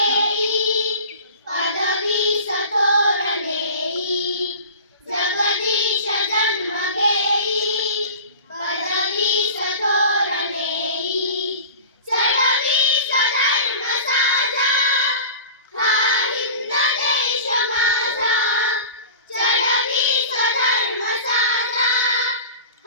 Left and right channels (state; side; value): inverted; both; correlation -0.37